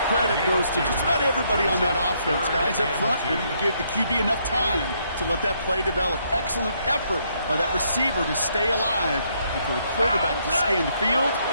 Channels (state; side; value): inverted; both; correlation -0.72